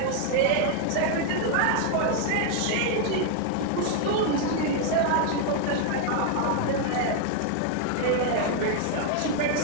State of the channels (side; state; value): both; different; correlation 0.00